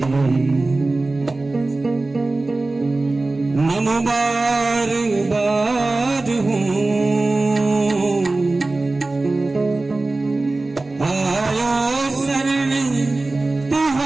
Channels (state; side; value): quieter; left; 3.2 dB